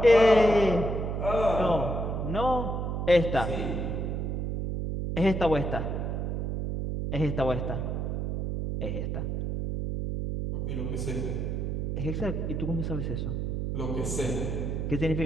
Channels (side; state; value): right; noise; hum, 2 dB below the sound